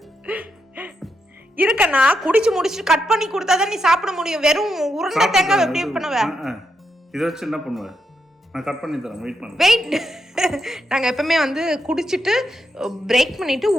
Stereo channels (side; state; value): both; normal; correlation 0.82